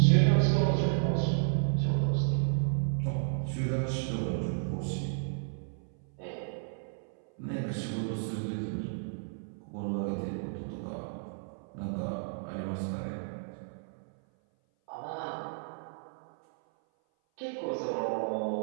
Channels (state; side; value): silent; left; 56 dB below the other